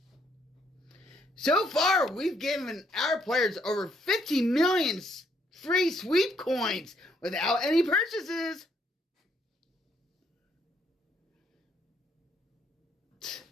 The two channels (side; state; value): both; normal; correlation 0.71